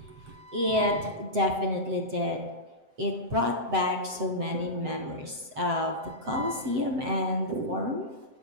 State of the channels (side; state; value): left; late; 7.7 ms